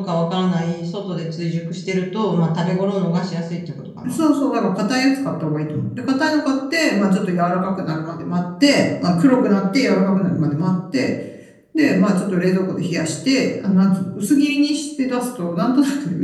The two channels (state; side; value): identical; both; correlation 1.00